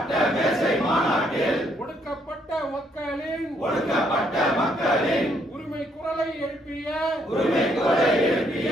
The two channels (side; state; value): both; normal; correlation 0.71